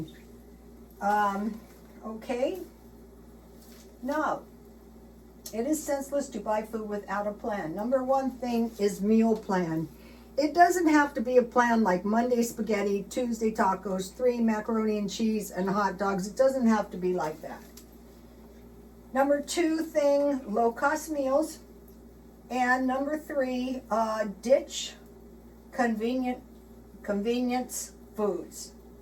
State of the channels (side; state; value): both; identical; correlation 1.00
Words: Okay. No. It is senseless to buy food without a plan. Number one thing is meal plan. It doesn't have to be a plan like Monday spaghetti, Tuesday tacos, 3 macaroni and cheese, and hot dogs. It doesn't have to be like that. Number 2 thing, low-cost meals. And number 3, ditch convenience foods